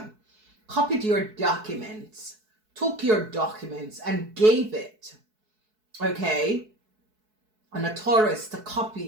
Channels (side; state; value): left; late; 4.6 ms